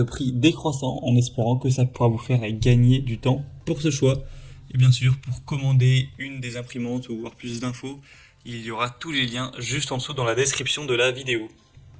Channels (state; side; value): identical; both; correlation 1.00